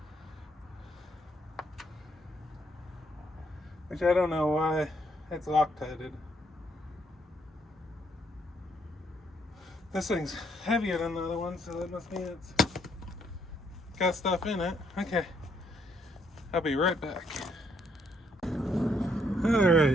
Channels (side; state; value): both; normal; correlation 0.71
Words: Which I don't know why it's Loctited. This thing's heavier than the other one, so that must mean it's got stuff in it. Okay. I'll be right back.